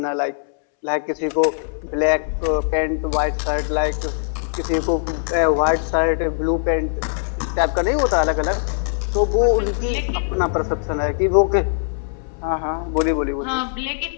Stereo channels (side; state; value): right; silent; 65 dB below the other